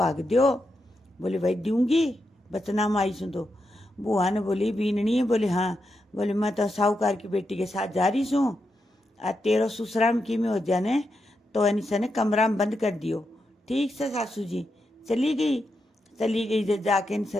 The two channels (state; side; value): normal; both; correlation 0.85